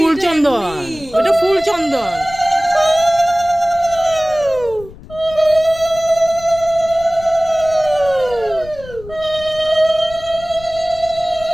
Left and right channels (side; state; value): left; noise; rumble, 18 dB below the sound